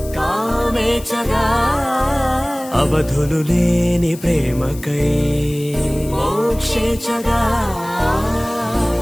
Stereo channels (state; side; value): noise; left; hiss, 18 dB below the sound